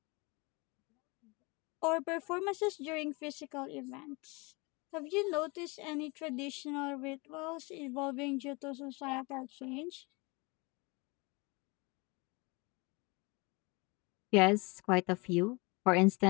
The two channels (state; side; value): quieter; right; 27.6 dB